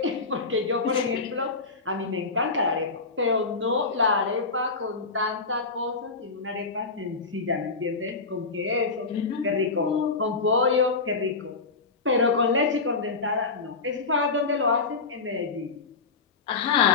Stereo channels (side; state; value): right; quieter; 4.2 dB